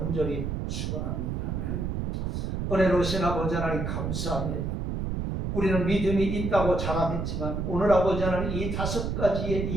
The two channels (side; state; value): right; noise; rumble, 2 dB below the sound